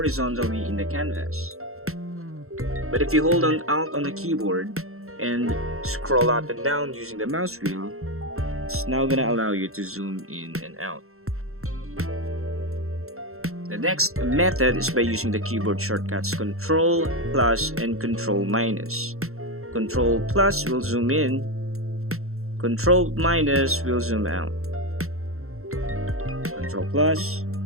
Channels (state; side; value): late; left; 0.63 ms